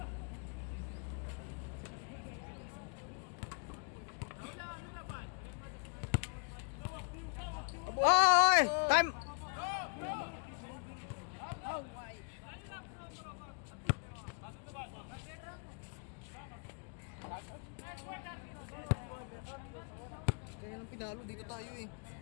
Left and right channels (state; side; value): quieter; right; 38.8 dB